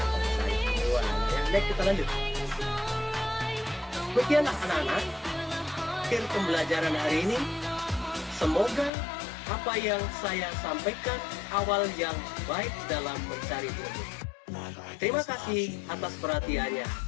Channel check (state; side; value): drops out; right; at 8.9 s